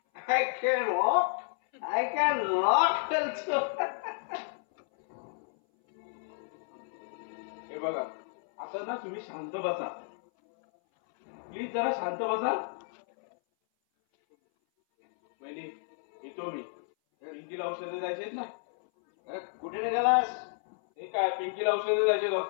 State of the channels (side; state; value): right; silent; 57 dB below the other